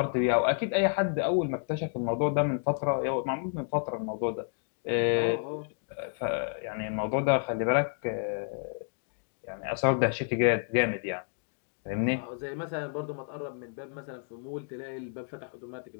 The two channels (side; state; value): right; silent; 57 dB below the other